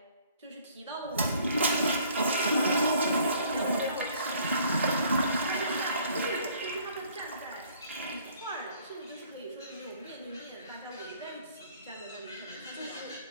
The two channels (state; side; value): inverted; both; correlation -0.58